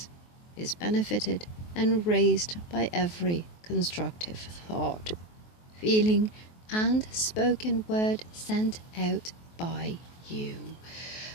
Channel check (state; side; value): late; right; 23 ms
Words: is benefited and raised by every constructive thought, feeling, and spoken word sent out by you.